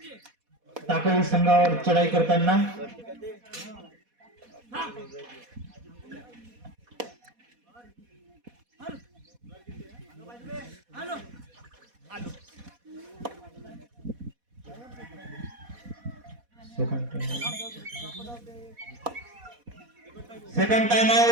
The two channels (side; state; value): left; late; 4.1 ms